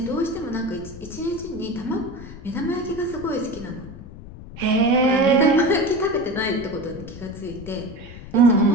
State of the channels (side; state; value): left; noise; rumble, 15 dB below the sound